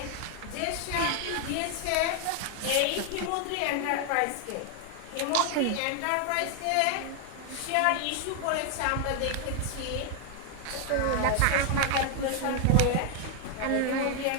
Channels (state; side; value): different; both; correlation 0.00